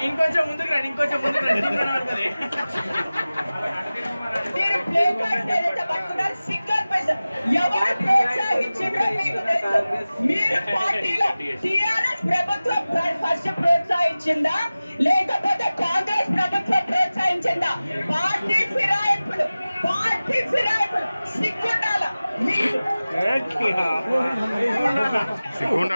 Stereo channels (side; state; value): both; inverted; correlation -0.97